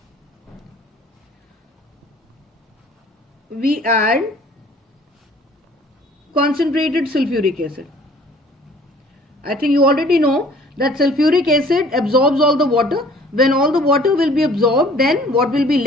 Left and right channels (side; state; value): both; normal; correlation 0.53